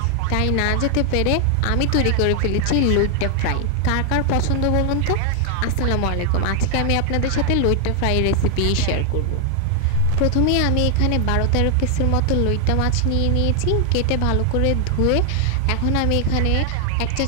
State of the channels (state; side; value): different; both; correlation 0.00